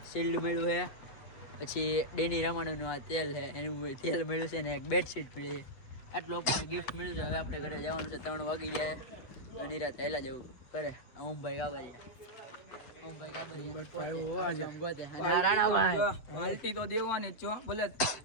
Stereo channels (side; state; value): right; late; 7.5 ms